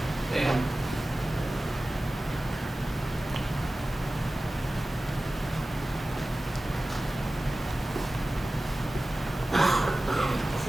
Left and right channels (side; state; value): both; normal; correlation 0.96